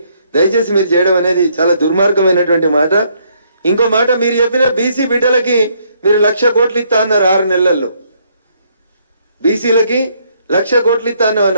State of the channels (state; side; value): inverted; both; correlation -0.69